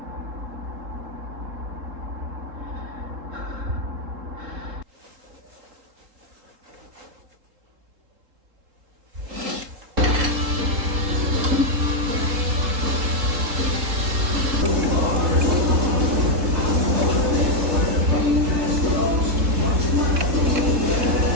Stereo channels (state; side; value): late; left; 3.7 ms